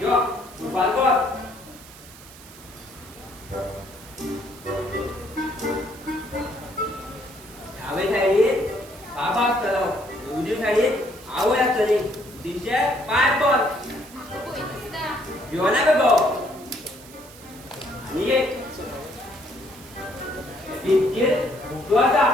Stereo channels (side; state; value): right; noise; hiss, 20 dB below the sound